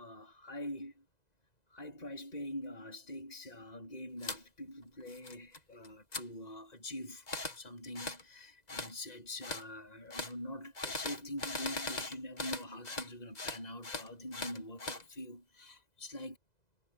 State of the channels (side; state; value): right; late; 2.0 ms